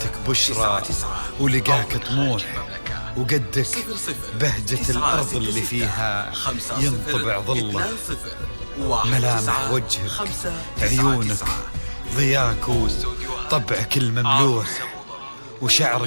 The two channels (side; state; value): both; inverted; correlation -1.00